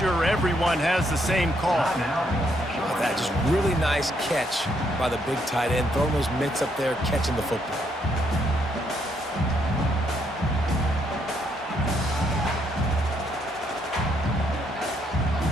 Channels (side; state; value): both; normal; correlation 0.73